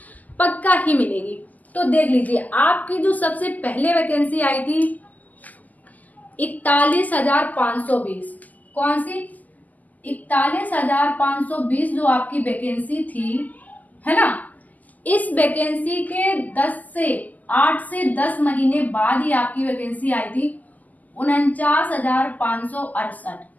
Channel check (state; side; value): late; right; 0.080 ms